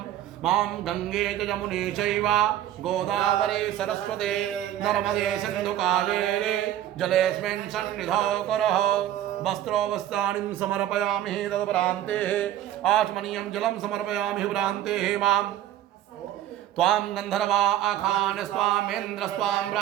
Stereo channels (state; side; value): quieter; left; 12.2 dB